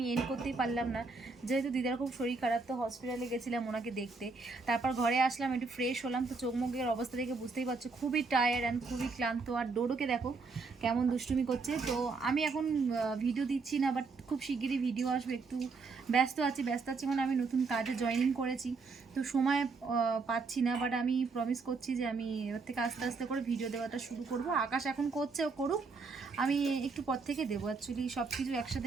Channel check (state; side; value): quieter; left; 4.3 dB